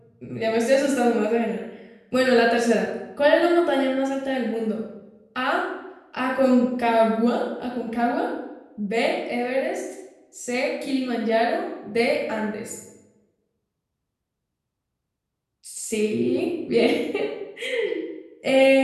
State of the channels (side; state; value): both; identical; correlation 1.00